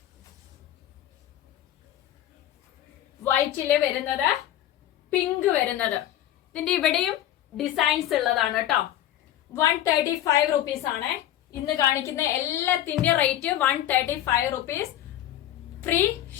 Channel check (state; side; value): quieter; right; 12.3 dB